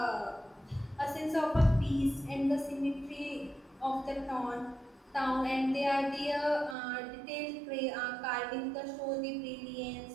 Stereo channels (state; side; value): drops out; left; at 6.8 s